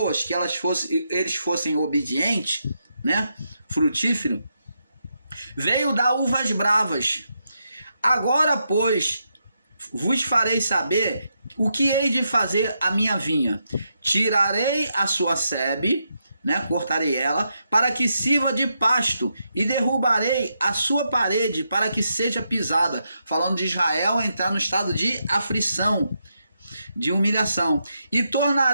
que eles fossem obedientes, né? Frutífero, veio dar uvas bravas. Agora, pois, vos farei saber o que hei de fazer a minha vinha. Tirarei a sua sebe, né, cortarei ela, para que sirva de pasto, e derrubarei a sua parede para que seja pisada. Falando de Israel entrar no estado de aflição, de humilhação. E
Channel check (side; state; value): both; inverted; correlation -0.82